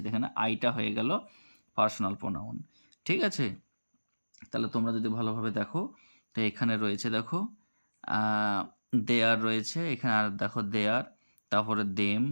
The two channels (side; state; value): both; inverted; correlation -1.00